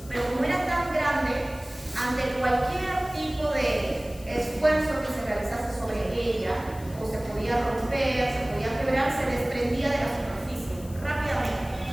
Pero como era tan grande, ante cualquier tipo de esfuerzo que se realizase sobre ella, o se podía romper, se podía quebrar, se desprendía de la superficie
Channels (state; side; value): noise; left; hiss, 20 dB below the sound